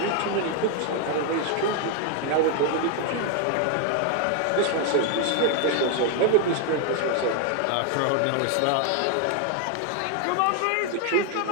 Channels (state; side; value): different; both; correlation 0.01